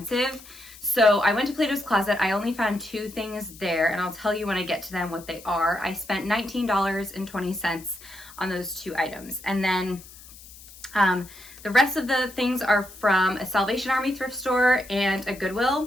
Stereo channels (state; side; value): noise; left; hiss, 19 dB below the sound